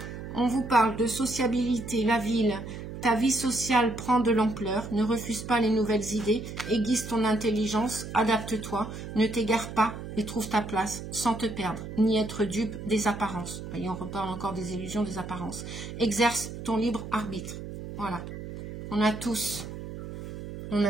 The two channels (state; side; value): noise; right; hum, 9 dB below the sound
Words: On vous parle de sociabilité, la ville. Ta vie sociale prend de l'ampleur. Ne refuse pas les nouvelles idées. Aiguise ton intelligence. Adapte-toi. Ne t'égare pas et trouve ta place sans te perdre, ni être dupe des apparences. Voyez, on reparle encore des illusions, des apparences. Exerce ton libre arbitre. Voilà. On a tous